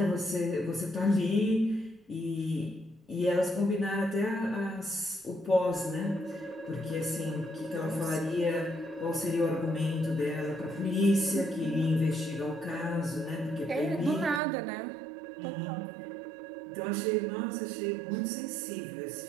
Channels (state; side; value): drops out; left; at 14.4 s